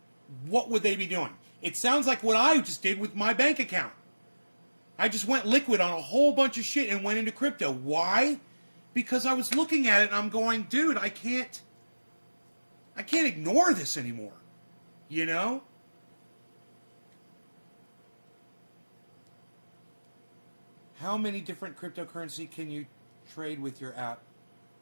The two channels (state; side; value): inverted; both; correlation -1.00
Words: What would they be doing? It sounds like what I just did with my bank account. I just went liquid on a whole bunch of shit and went into crypto. Why? Because I was looking at it and I'm going, dude, I can't ignore this anymore. How many different cryptocurrency can you trade with your app?